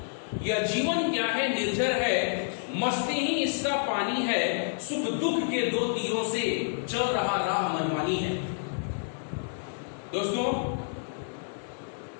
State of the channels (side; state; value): right; silent; 59 dB below the other